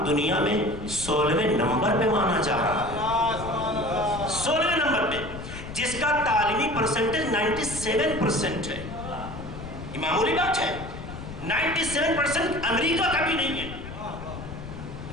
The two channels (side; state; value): left; noise; rumble, 10 dB below the sound